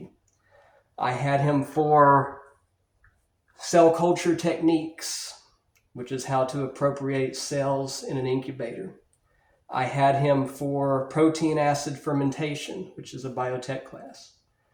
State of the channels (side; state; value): both; identical; correlation 1.00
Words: I had him for cell culture techniques, which is how to appropriate cells in an incubator. I had him for protein acid fermentation, which is a biotech class.